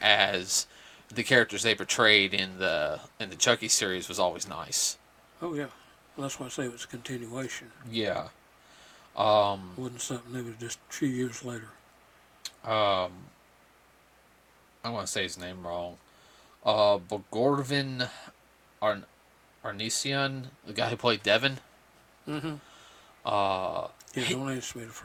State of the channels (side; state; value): both; identical; correlation 1.00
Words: as the characters they portrayed in the Chucky series was always nice. Oh, yeah. Well, that's why I say it was a continuation. Yeah. It wasn't something that was just a few years later. Um, I want to say his name wrong. Bogorvin Arn- Arnesian, the guy who played Devin. Mm-hmm. Uh, Yeah, he, don't ask me